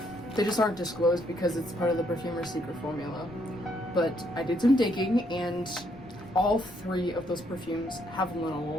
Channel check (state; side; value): noise; left; rumble, 23 dB below the sound